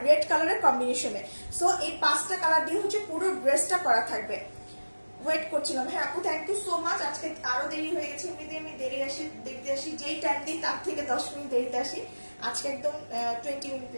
রেড কালারের কম্বিনেশনে। সো এই 5টা কালার দিয়ে হচ্ছে পুরো ড্রেসটা করা থাকবে। ওয়েট করছিলাম, হ্যাঁ আপু থ্যাংক ইউ সো মাচ। আজকে আরো দেরি হয়ে গেছে, এমনিতে আমি দেখতে আসি যেই টাইম দিই তার থেকে 10 মিনিট দেরিতে আসি, আজকে একদম 20 মিনিট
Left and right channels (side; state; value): both; inverted; correlation -1.00